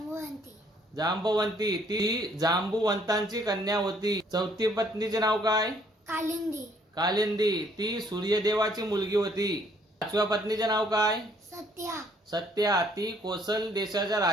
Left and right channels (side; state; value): both; normal; correlation 0.64